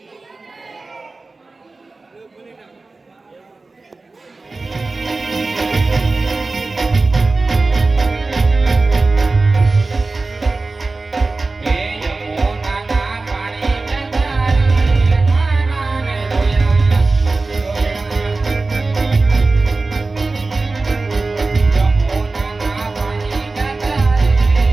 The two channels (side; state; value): left; quieter; 3.6 dB